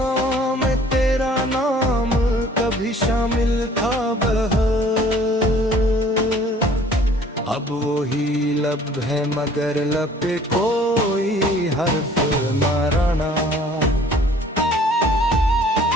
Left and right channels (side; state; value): both; normal; correlation 0.54